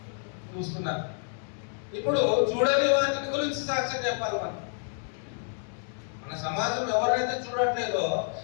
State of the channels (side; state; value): right; silent; 59 dB below the other